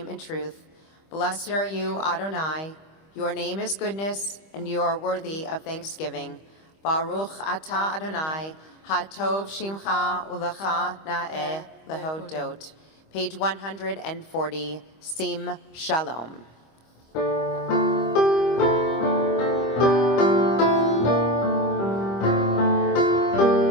in truth. Blessed are you, Adonai. Your name is goodness, and you are worthy of thanksgiving. Baruch atah Adonai, hatov shimcha ulecha na'eh lehodot. Page 140, Sim Shalom.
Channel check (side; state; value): right; late; 25 ms